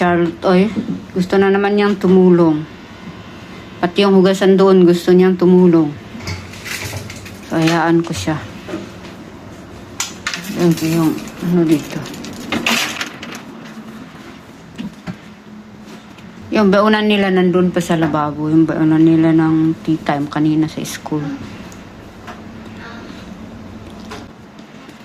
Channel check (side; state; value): both; identical; correlation 1.00